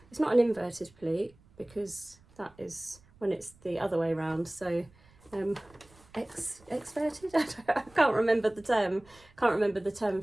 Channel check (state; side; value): noise; right; rumble, 28 dB below the sound